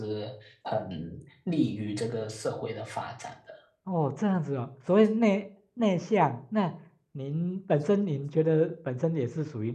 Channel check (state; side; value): identical; both; correlation 1.00